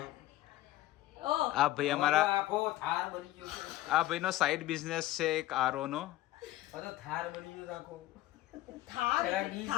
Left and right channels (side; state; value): right; quieter; 15.9 dB